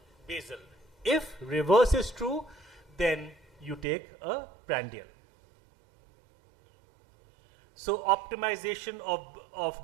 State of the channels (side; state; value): left; drops out; at 3.9 s